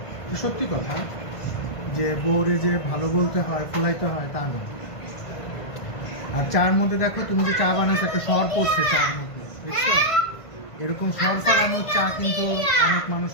সত্যি কথা যে বউরে যে ভালো বলতে হয়, ফুলাইতে হয় তা না। আর চার মধ্যে দেখো, তুমি যে চা বানাচ্ছো একটা সর পড়ছে চার মধ্যে, দেখছো? এরকম সর ফালানোর চা কিন্তু অনেক মানুষ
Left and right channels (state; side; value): late; right; 1.5 ms